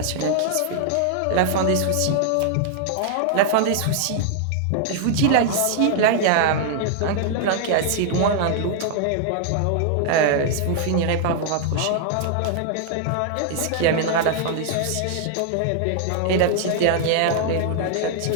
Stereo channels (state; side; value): different; both; correlation 0.00